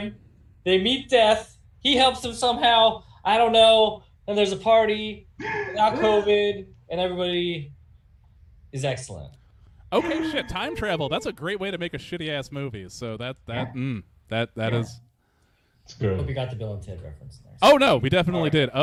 They meet Death. He helps them somehow. I don't know. and there's a party without COVID, and everybody is excellent. Okay, shit. Time travel. That's a great way to make a shitty ass movie. So that is. It's good. Hope you got the Bill and Ted reference there. Oh no, we definitely did.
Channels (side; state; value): both; identical; correlation 1.00